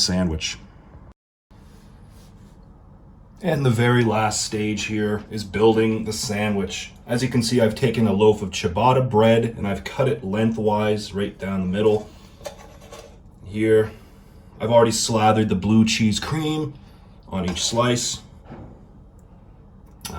And the very last stage here is building the sandwich. As you can see, I've taken a loaf of ciabatta bread and I've cut it lengthwise right down the middle. Here, I've already slathered the blue cheese cream on each slice.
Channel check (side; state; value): both; identical; correlation 1.00